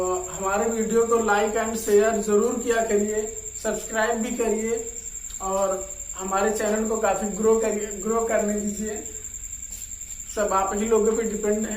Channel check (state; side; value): identical; both; correlation 1.00